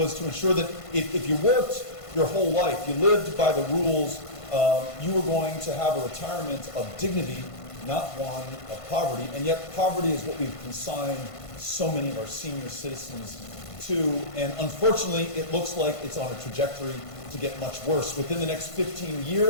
to ensure that if you worked your whole life, you lived by the rules, you were going to have a retirement of dignity, not one of poverty. And yet poverty is what we've consigned so many of our senior citizens to. And unfortunately, it looks like it's on a trajectory to get much worse. Within the next 15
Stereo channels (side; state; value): right; late; 1.5 ms